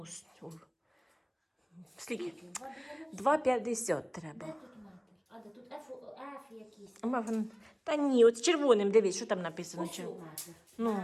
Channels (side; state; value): both; identical; correlation 1.00